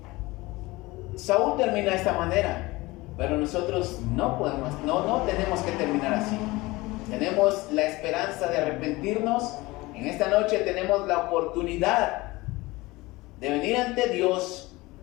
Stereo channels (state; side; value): quieter; right; 21.2 dB